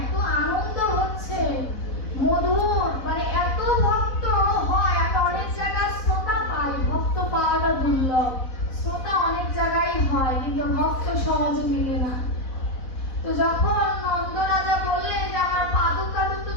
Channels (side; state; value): right; late; 4.0 ms